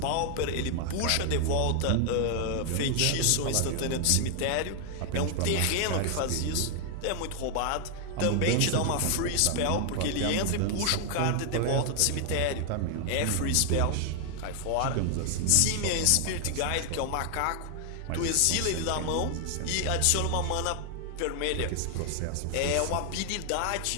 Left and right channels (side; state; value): both; different; correlation 0.00